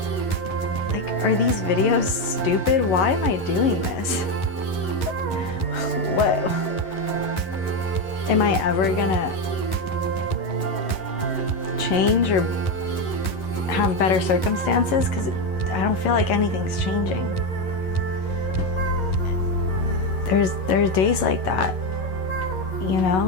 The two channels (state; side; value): late; right; 11 ms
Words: like, are these videos stupid? Why am I doing this? What? Am I ever gonna change or have better circumstances? Because I don't feel like anything's changing. There's days like that, you